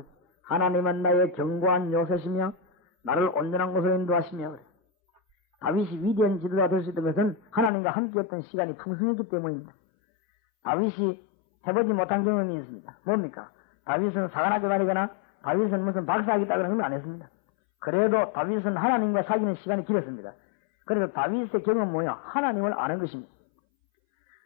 하나님은 나의 견고한 요새시며 나를 온전한 곳으로 인도하시며 그래. 다윗이 위대한 지도자 될 수 있던 것은 하나님과 함께했던 시간이 풍성했기 때문입니다. 다윗이 해보지 못한 경험이 있습니다. 뭡니까? 다윗은 사관학교 다니거나 다윗은 무슨 박사학위 따거나 그런 건 안 했습니다. 그래도 다윗은 하나님과 사귀는 시간이 길었습니다. 그래서 다윗의 경험은 뭐냐? 하나님을 아는 것입니다.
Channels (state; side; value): drops out; right; at 7.7 s